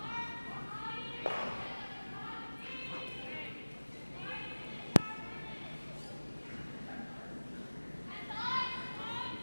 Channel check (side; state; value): both; inverted; correlation -1.00